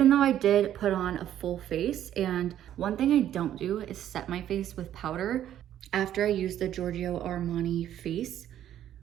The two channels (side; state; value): left; quieter; 11.3 dB